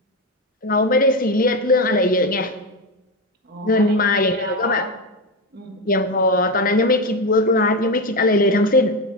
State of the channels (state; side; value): normal; both; correlation 0.15